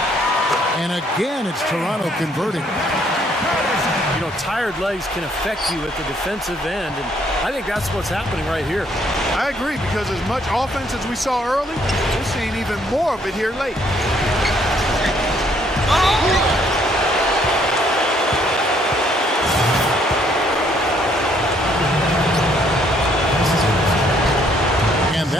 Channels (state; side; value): normal; both; correlation 0.67